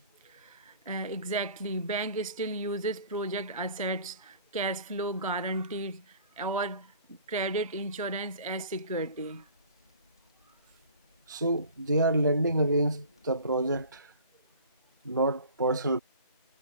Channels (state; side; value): inverted; both; correlation -0.46